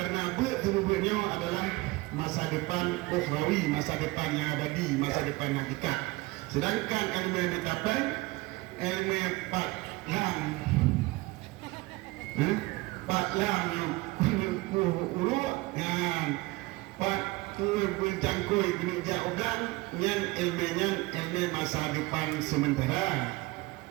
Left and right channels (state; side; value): quieter; left; 21.7 dB